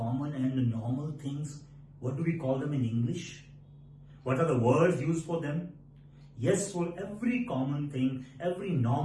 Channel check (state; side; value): identical; both; correlation 1.00